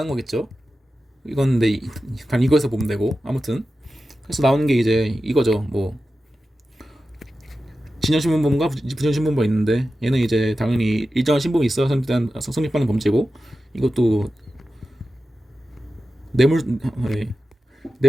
거겠죠. 이건 근데 단 이거에서 보면 되고, 아무튼 그래서 나오는 게 이제 이거죠. 진전신분범과 부전신분범이 있는데, 얘는 이제 당연히 일정한 신분이 있어야 성립하는 범죄고, 이것도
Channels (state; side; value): normal; both; correlation 0.93